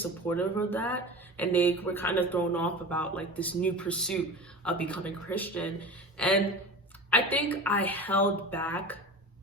of that. And they were kind of thrown off about like this new pursuit of becoming Christian. And I think I held back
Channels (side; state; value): both; normal; correlation 0.32